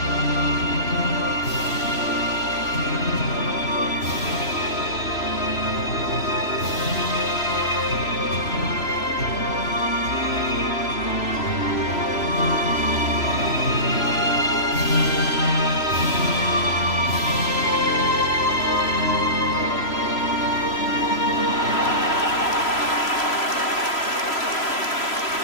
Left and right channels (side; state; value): right; late; 3.0 ms